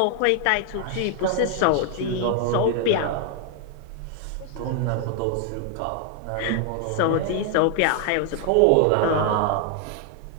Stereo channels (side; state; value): both; different; correlation 0.00